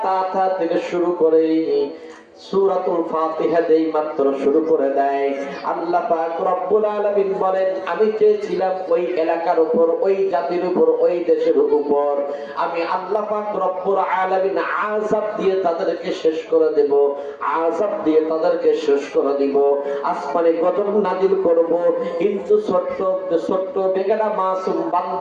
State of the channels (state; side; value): identical; both; correlation 1.00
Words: তা থেকে শুরু করে সূরাতুল ফাতিহা যেই মাত্র শুরু করে দেয়, আল্লাহ পাক রব্বুল আলামিন বলেন, আমি চেয়েছিলাম ওই এলাকার উপর, ওই জাতির উপর, ওই দেশের উপর আমি আল্লাহ পাক রব্বুল আলামিন আযাব দিয়ে তাদেরকে শেষ করে দেব, আযাব দিয়ে তাদেরকে শেষ করে দিব, আসমানে গজব নাজিল করব। কিন্তু ছোট্ট বেগানা মাসুম